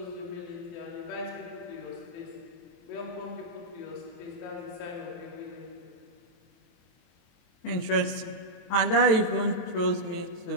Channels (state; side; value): late; right; 23 ms